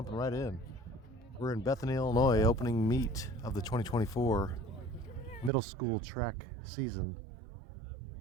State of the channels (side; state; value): left; drops out; at 5.5 s